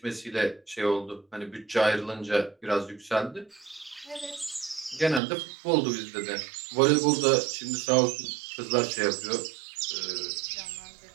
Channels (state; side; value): drops out; left; at 5.2 s